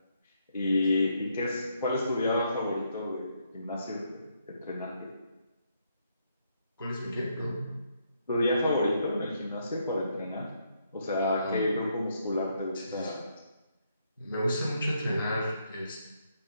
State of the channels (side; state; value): both; inverted; correlation -0.75